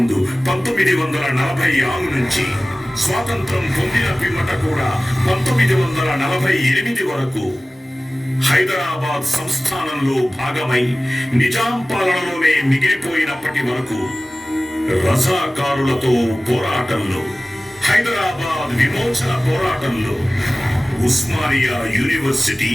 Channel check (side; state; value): both; normal; correlation 0.97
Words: 1946 నుంచి స్వాతంత్రం పొందిన పిమ్మట కూడా 1948 వరకు హైదరాబాద్ సంస్థానంలో భాగమై నిజాం పాలనలోనే మిగిలిపోయినప్పటి వరకు రజాకారులతో పోరాటంలో, హైదరాబాద్ విమోచన పోరాటంలో ఉస్మానియా యూనివర్సిటీ